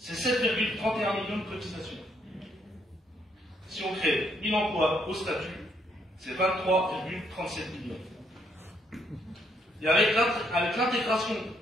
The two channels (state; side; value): normal; both; correlation 0.72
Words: 7,31 millions de cotisations. Si on crée 1000 emplois au statut, c'est 23,37 millions. Et avec l'intégration